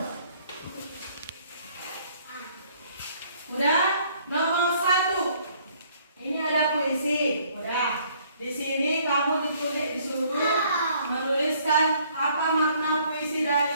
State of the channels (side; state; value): both; inverted; correlation -0.62